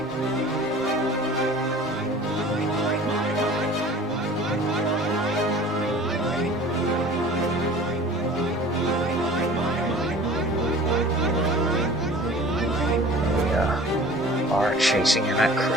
We are chasing him at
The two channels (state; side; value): normal; both; correlation 0.44